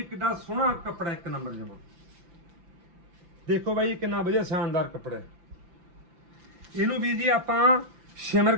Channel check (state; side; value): late; left; 5.8 ms